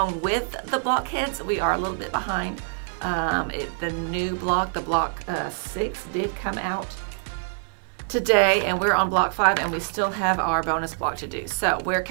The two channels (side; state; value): left; silent; digital silence